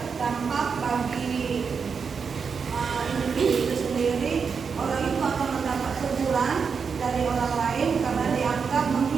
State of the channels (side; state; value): left; quieter; 5.8 dB